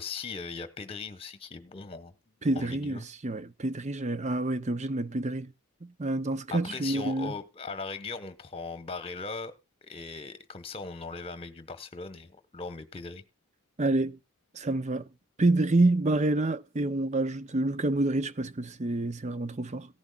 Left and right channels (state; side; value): normal; both; correlation 0.68